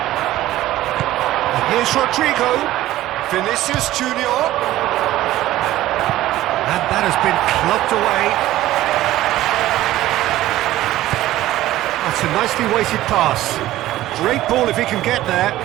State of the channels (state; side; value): quieter; left; 15.1 dB